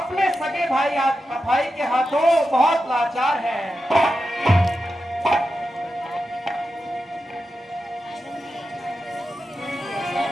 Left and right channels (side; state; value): both; normal; correlation 0.90